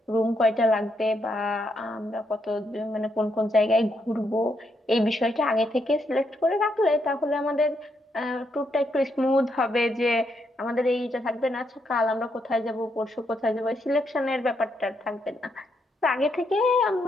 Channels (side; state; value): both; normal; correlation 0.78